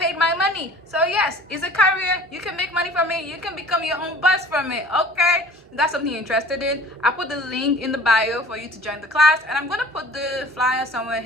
paid my money. So yes, it's a career. You can make money from it. You can become your own boss from it. Okay, if that's something you're interested in, I'll put the link in the bio for you to join the class, and I'm going to put the flyer somewhere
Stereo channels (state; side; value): normal; both; correlation 0.48